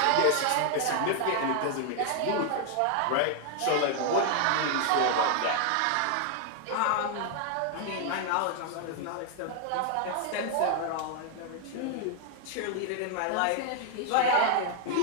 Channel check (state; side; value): different; both; correlation 0.00